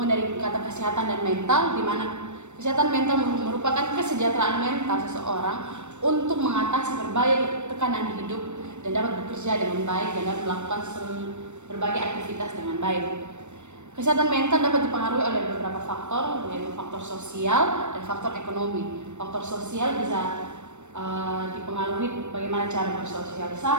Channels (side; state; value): left; late; 0.83 ms